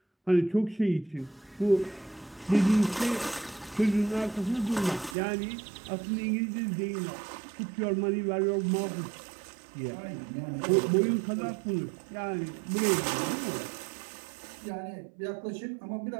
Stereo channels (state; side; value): drops out; left; at 5.2 s